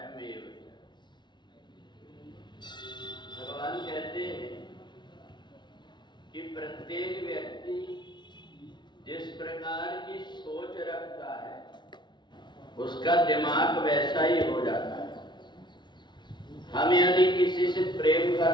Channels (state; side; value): late; right; 0.22 ms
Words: भगवान कहते हैं कि प्रत्येक व्यक्ति जिस प्रकार की सोच रखता है उसका दिमाग वैसा ही हो जाता है। हम यदि किसी से प्रेम